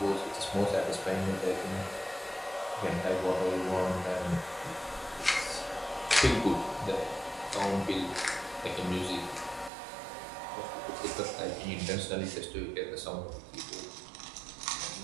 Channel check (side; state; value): left; drops out; at 9.7 s